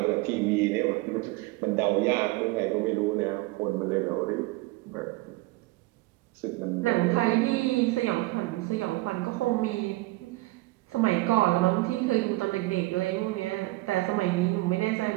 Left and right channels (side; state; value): left; quieter; 20.7 dB